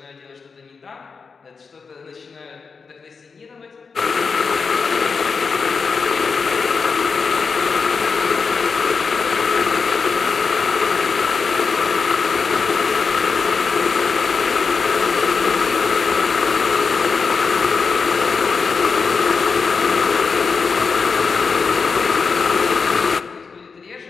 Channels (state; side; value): quieter; right; 5.1 dB